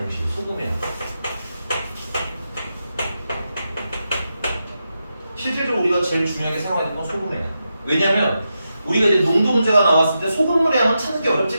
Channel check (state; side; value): inverted; both; correlation -0.88